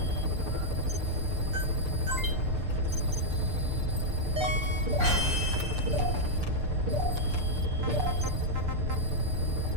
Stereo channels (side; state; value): left; late; 6.7 ms